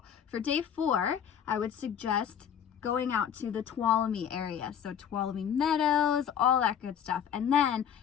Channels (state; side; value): quieter; right; 8.6 dB